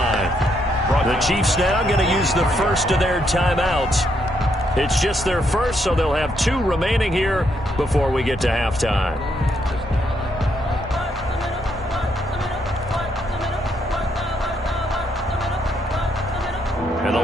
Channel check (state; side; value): normal; both; correlation 0.75